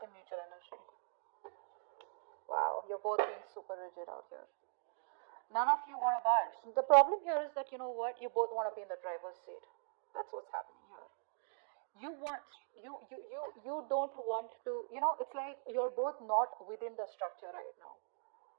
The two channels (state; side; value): silent; left; digital silence